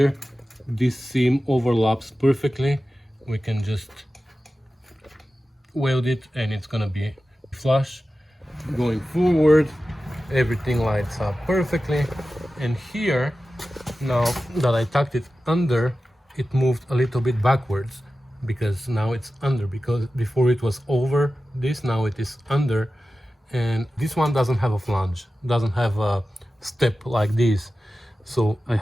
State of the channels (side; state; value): both; normal; correlation 0.94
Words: this seam overlaps perfectly. We can just weld it and it's gonna be flush. Going forward, everything lights up perfectly. And here, now that I tucked it under, it moved a little bit backwards because now it's under, because before it was over this, now it is under. And this one doesn't have a flange, doesn't have a step like this. So I